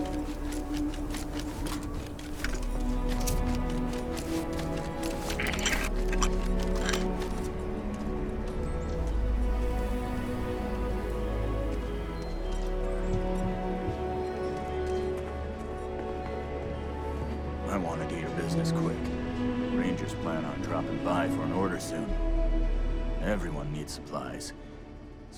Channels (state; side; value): identical; both; correlation 1.00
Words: I wanted to hear business quick. Rangers plan on dropping by for an order soon. Everyone needs supplies.